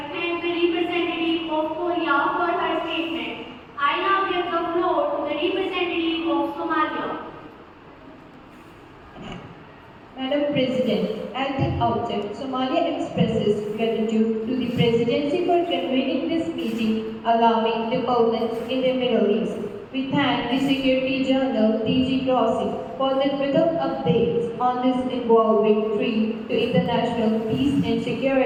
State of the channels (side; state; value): both; identical; correlation 1.00